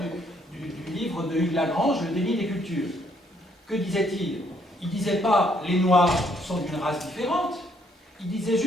du livre de Hugues Lagrange, Le déni des cultures. Que disait-il? Il ne disait pas les Noirs sont d'une race différente, il disait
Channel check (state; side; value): normal; both; correlation 0.69